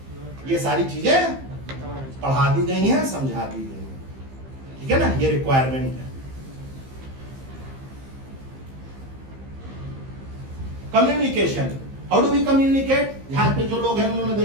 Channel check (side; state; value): left; late; 15 ms